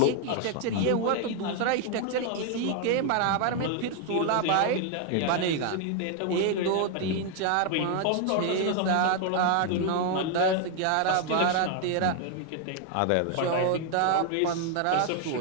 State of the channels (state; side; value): different; both; correlation 0.00